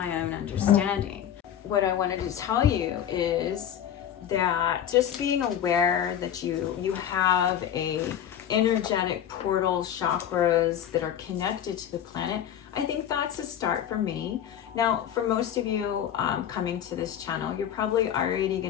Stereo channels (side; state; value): right; quieter; 9.9 dB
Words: own understanding. What I wanted to tell you is that just being aware that you have a energetic portal chakras that are connected to the planet, I think that's a start for me. Now, for most of you coming to this channel, you're probably already